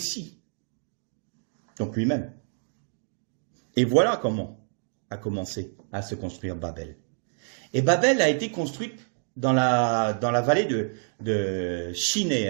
Donc lui-même. Et voilà comment a commencé à se construire Babel. Et Babel a été construite dans la vallée de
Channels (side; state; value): left; silent; digital silence